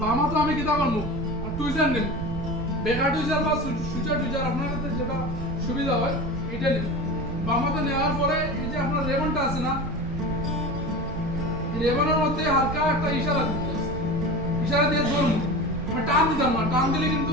বামা তো আমি কিতা করবো টুইজার নেব, বেকার টুইজার বা সুইচার টুইজার আপনার কাছে যেটা সুবিধা হয় এটা নেব। বামাতে নেওয়ার পরে এই যে আপনার রেবনটা আছে না, রেবনের মধ্যে হালকা একটা ইশারা দিতে হবে, ইশারা দিয়ে ধরবো, আমি টান দিতাম না, টান দিলে কিন্তু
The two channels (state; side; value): noise; right; rumble, 7 dB below the sound